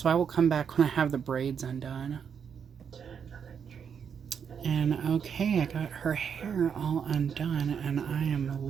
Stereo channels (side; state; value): left; quieter; 7.2 dB